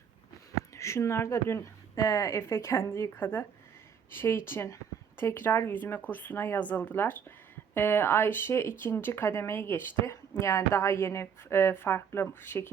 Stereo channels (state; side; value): quieter; left; 7.3 dB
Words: Şunlar da dün Efe kendi yıkadı. Şey için tekrar yüzme kursuna yazıldılar. Ayşe ikinci kademeyi geçti. Yani daha yeni farklı